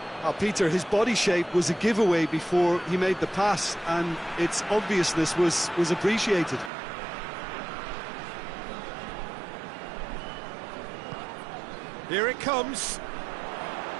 Peter, his body shape was a giveaway before he made the pass, and its obviousness was appreciated. Here it comes.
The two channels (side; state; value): left; drops out; at 6.7 s